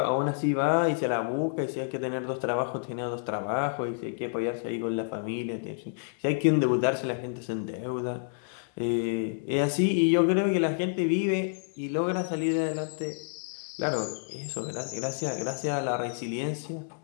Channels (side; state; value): right; silent; digital silence